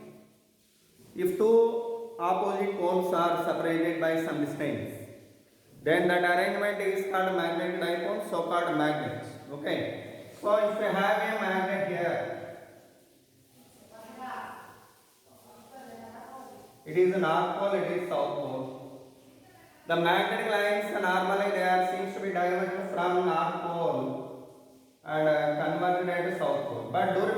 if two opposite poles are separated by some distance, then that arrangement is called magnetic dipole, so called magnets. Okay. So if you have a magnet here, it is north pole, it is south pole. The magnetic lines normally they are seems to be diverged from north pole and converged at south pole. But do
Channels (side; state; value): both; identical; correlation 1.00